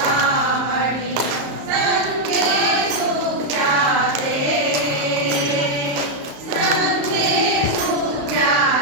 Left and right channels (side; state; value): left; late; 34 ms